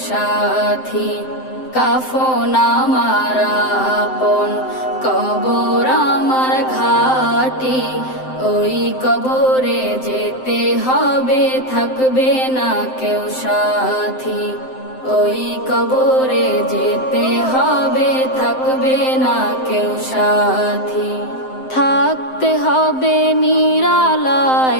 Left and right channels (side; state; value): right; late; 7.7 ms